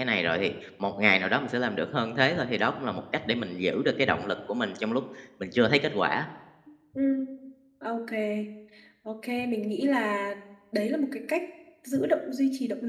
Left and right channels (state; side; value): identical; both; correlation 1.00